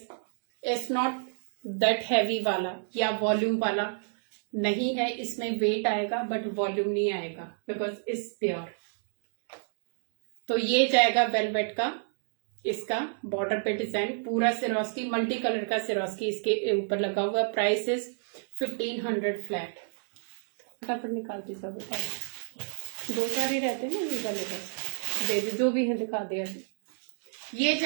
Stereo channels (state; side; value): silent; left; digital silence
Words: it's not that heavy वाला या वॉल्यूम वाला नहीं है, इसमें वेट आएगा बट वॉल्यूम नहीं आएगा बिकॉज इट्स प्योर। तो ये जाएगा वेलवेट का, इसका बॉर्डर पे डिजाइन पूरा सिरोस्की, मल्टी कलर का सिरोस्की इसके ऊपर लगा हुआ। Price is 1500 flat. फटाफट निकालती सब, दो चार ही रहते हैं ना ये वाले, बस दे दे जो भी है दिखा दे अभी। ये